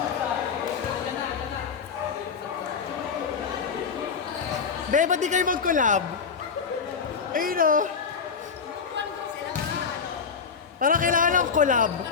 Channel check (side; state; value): right; quieter; 6.0 dB